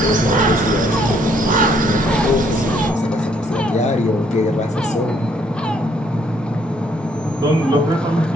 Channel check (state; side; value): normal; both; correlation 0.67